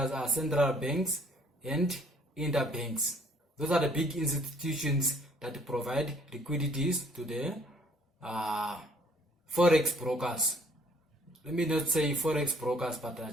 are central banks and interbanks. Those are the big institutions that provide liquidities to the Forex brokers. Let me not say Forex brokers, but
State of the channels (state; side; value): normal; both; correlation 0.60